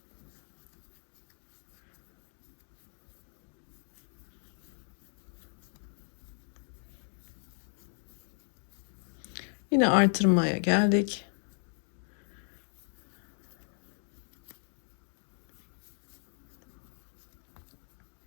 Yine artırmaya geldik.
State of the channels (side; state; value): right; silent; 54 dB below the other